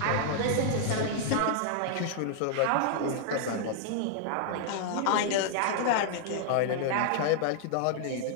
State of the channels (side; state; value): both; different; correlation -0.01